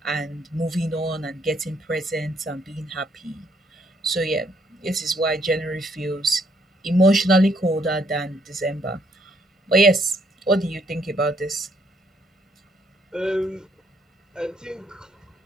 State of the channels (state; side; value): normal; both; correlation 0.70